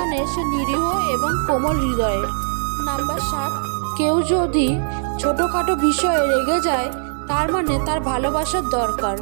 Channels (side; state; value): left; silent; 60 dB below the other